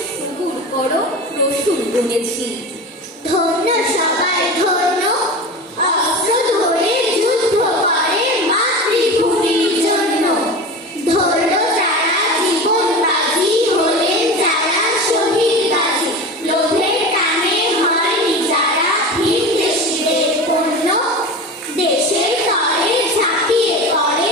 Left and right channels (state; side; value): normal; both; correlation 0.30